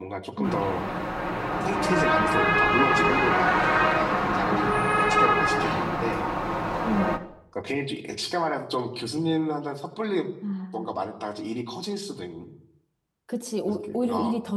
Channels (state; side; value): identical; both; correlation 1.00